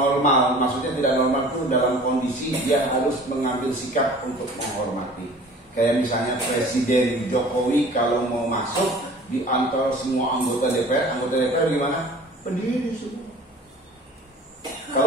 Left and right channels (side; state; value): both; normal; correlation 0.44